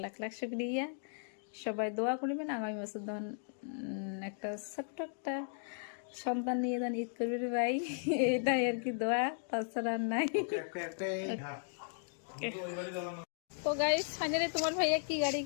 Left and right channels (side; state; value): right; silent; digital silence